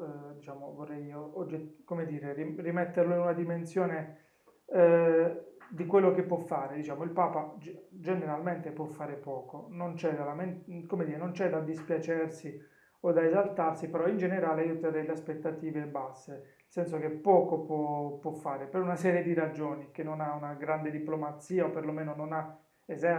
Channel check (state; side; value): identical; both; correlation 1.00